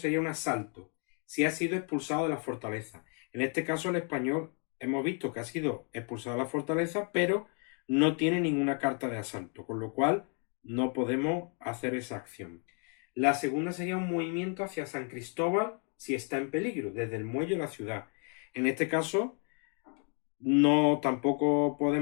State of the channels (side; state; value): right; quieter; 39.1 dB